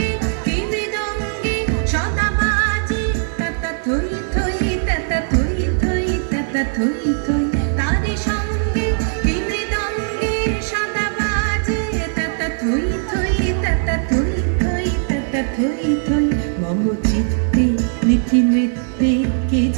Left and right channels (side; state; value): left; silent; digital silence